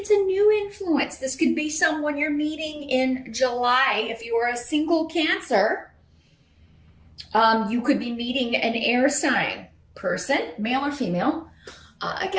a new influence. This could be someone you're meeting in July. If you are a single Cancer, you could be meeting an air sign person, male or female.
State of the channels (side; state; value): both; identical; correlation 1.00